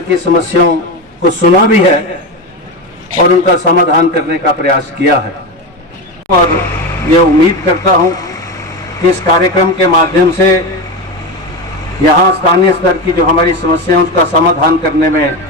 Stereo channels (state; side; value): normal; both; correlation 0.18